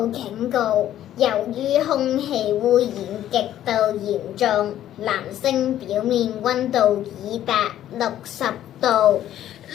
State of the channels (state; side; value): quieter; right; 12.0 dB